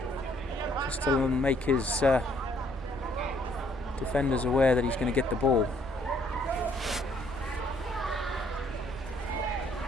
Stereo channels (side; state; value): right; noise; rumble, 15 dB below the sound